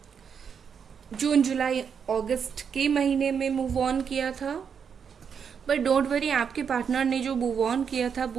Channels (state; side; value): quieter; left; 6.9 dB